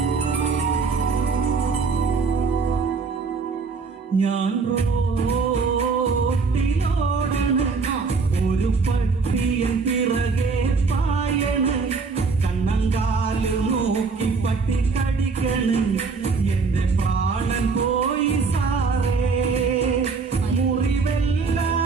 ഞാൻ റോട്ടിലോടണ്, ഒരു പട്ടിയൻ പിറകെ പായണ്, കണ്ണങ്കാല് നോക്കി പട്ടി കടിക്കണ്, എന്റെ പ്രാണൻ പോയി സാറേ,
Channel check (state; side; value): quieter; left; 4.6 dB